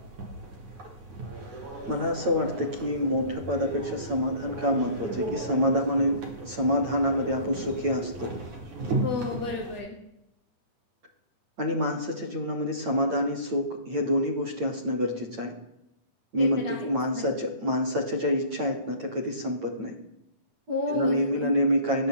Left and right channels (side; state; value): left; late; 8.9 ms